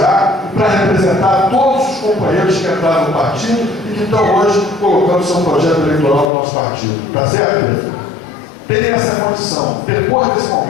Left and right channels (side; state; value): right; drops out; at 6.3 s